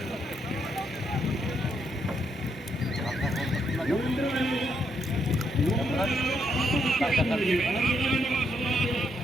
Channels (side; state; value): both; normal; correlation 0.76